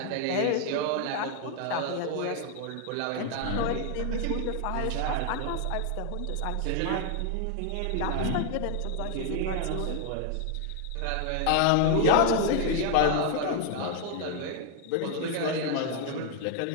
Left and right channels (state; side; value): different; both; correlation 0.00